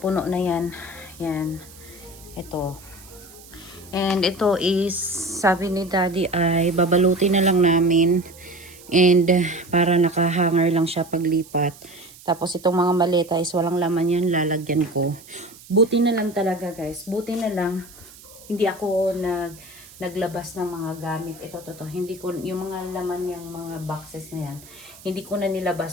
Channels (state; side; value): noise; right; hiss, 21 dB below the sound